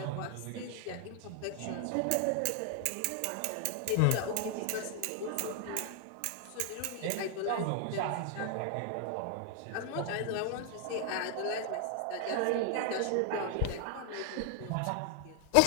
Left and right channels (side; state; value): both; different; correlation 0.00